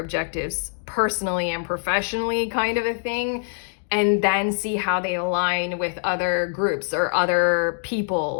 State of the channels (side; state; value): right; silent; digital silence